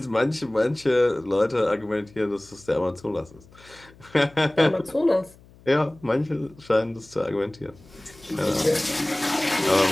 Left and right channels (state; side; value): noise; left; hum, 25 dB below the sound